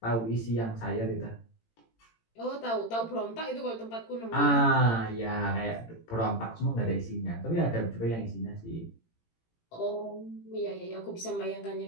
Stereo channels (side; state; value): right; late; 18 ms